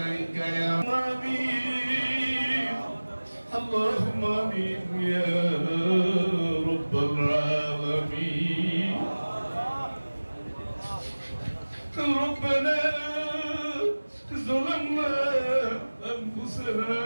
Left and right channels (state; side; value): inverted; both; correlation -1.00